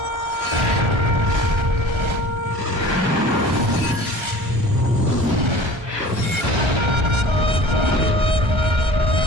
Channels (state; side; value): late; left; 1.3 ms